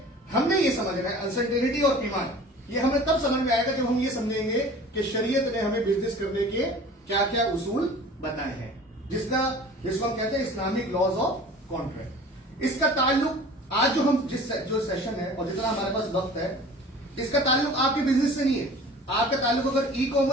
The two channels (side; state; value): both; normal; correlation 0.43